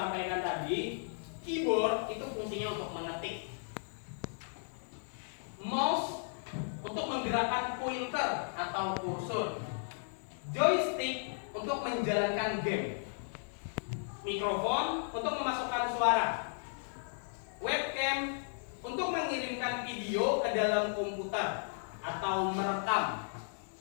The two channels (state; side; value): silent; right; digital silence